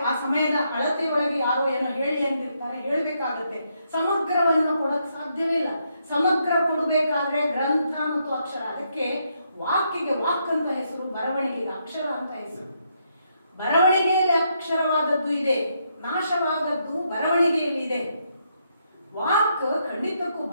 ಆ ಸಮಯದ ಅಳತೆಯೊಳಗೆ ಯಾರೋ ಏನೋ ಹೇಳಿ ಅಂತಿರ್ತಾರೆ, ಹೇಳ್ಬೇಕಾಗತ್ತೆ. ಸಮಗ್ರವನ್ನು ಕೊಡಕ್ ಸಾಧ್ಯವಿಲ್ಲ. ಸಮಗ್ರ ಕೊಡಬೇಕಾದ್ರೆ ಗ್ರಂಥ ಮತ್ತು ಅಕ್ಷರ, ಅದಕ್ಕೆ ವಾಕ್ಯಗೆ ವಾಕ್ ಅಂತ ಹೆಸರು, ಬರವಣಿಗೆಗೆ ಅಕ್ಷರ ಅಂತ ಹೆಸರು. ಬರವಣಿಗೆಯಲ್ಲಿ ಅಕ್ಷರವಾದದ್ದು ಇದೆ, ನಾಶವಾದದ್ದು ಬರವಣಿಗೆಯಲ್ಲಿ ಇದೆ. ವಾಕ್ ಖಂಡಿತಕ್ಕೂ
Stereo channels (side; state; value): both; inverted; correlation -0.77